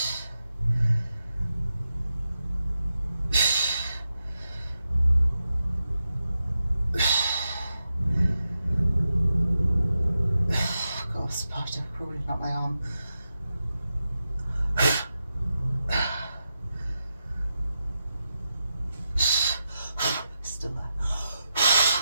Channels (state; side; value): inverted; both; correlation -0.87